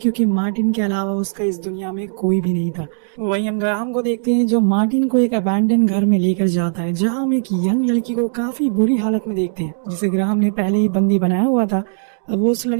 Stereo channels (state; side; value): silent; left; digital silence